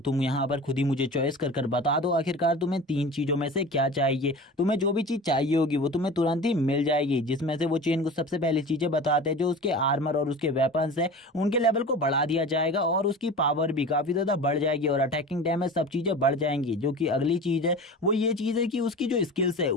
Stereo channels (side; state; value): both; normal; correlation 0.35